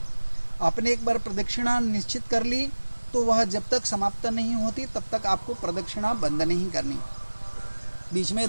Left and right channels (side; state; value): both; inverted; correlation -1.00